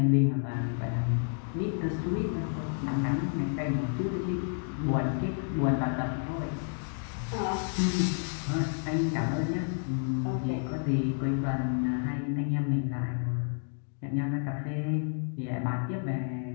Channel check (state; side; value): silent; right; 58 dB below the other